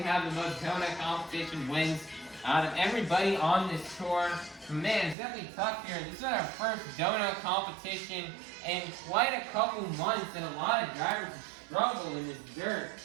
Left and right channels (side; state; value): left; drops out; at 5.2 s